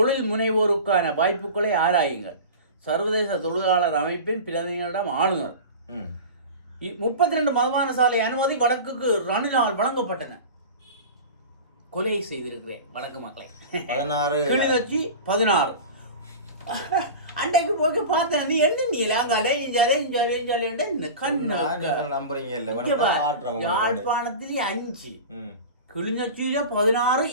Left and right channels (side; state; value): both; inverted; correlation -0.32